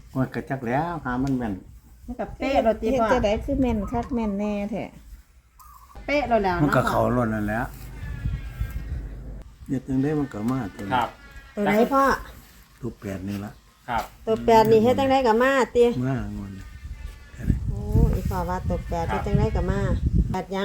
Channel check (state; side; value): identical; both; correlation 1.00